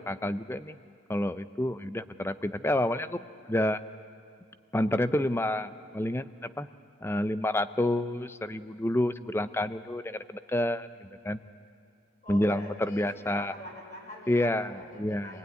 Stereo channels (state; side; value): normal; both; correlation 0.82